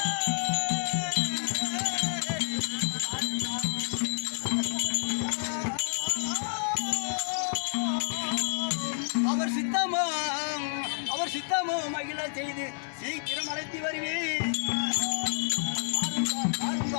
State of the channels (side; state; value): right; silent; digital silence